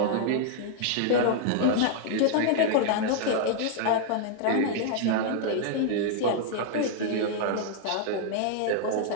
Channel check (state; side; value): different; both; correlation 0.00